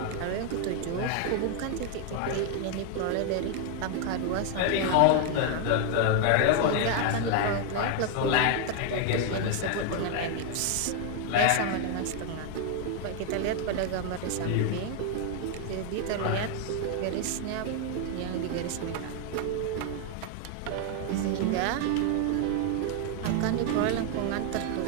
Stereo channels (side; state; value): both; different; correlation 0.01